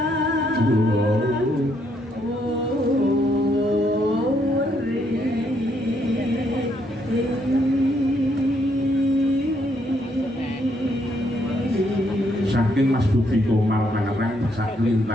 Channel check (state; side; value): normal; both; correlation 0.73